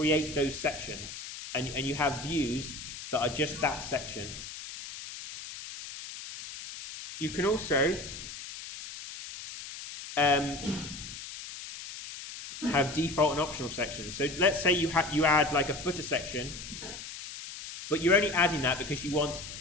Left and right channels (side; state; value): left; noise; hiss, 11 dB below the sound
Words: those sections. And you have views that are just that section. You can also have default and optional sections. So let's say you add like a footer section, but you're only adding that because you want,